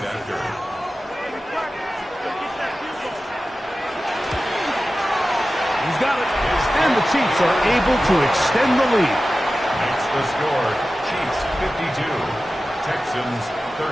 He's got it. And the Chiefs are able to extend the lead. Makes the score. Chiefs 52. Texans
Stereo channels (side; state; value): both; normal; correlation 0.95